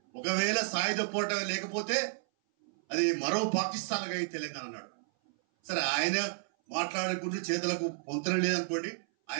ఒకవేళ సాయుధ పోరాటం లేకపోతే అది మరో పాకిస్తాన్ గా తెలంగాణ అన్నాడు. సరే, ఆయన మాట్లాడుకుంటూ చేతులకు పొంతన లేదనుకోండి,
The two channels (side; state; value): left; silent; 56 dB below the other